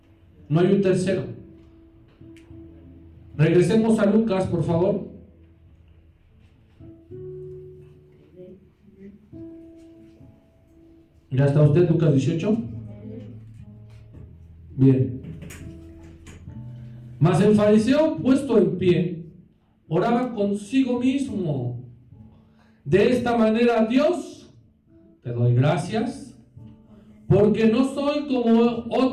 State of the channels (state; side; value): identical; both; correlation 1.00